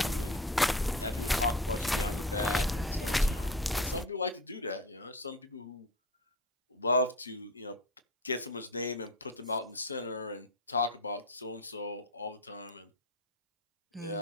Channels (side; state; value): both; normal; correlation 0.30